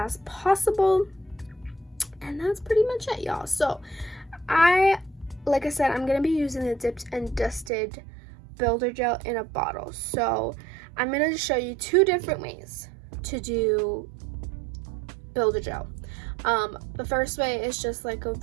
possible, and that's pretty much it, y'all. So like I said, I'm gonna be using the dipped and dusted builder gel in a bottle. So I'm gonna show you 2 different ways to do builder gel. The first way is just like a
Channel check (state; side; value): drops out; left; at 7.7 s